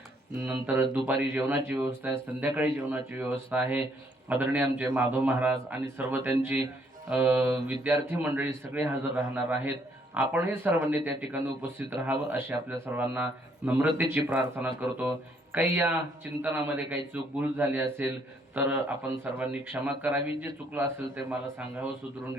नंतर दुपारी जेवणाची व्यवस्था आहे, संध्याकाळी जेवणाची व्यवस्था आहे. आदरणीय आमचे माधव महाराज आणि सर्व त्यांची विद्यार्थी मंडळी सगळे हजर राहणार आहेत. आपणही सर्वांनी त्या ठिकाणी उपस्थित राहावं अशी आपल्या सर्वांना नम्रतेची प्रार्थना करतो. काही या चिंतनामध्ये काही चूक भूल झाली असेल तर आपण सर्वांनी क्षमा करावी. जे चुकलं असेल ते मला सांगावं, सुधरून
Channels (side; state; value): both; normal; correlation 0.68